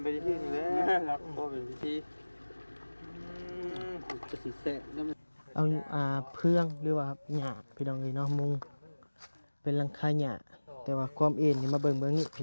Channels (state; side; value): inverted; both; correlation -1.00